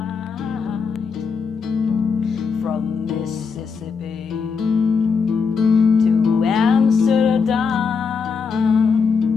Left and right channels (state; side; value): quieter; right; 5.5 dB